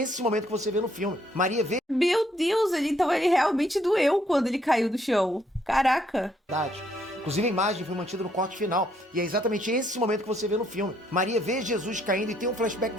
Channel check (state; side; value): normal; both; correlation 0.70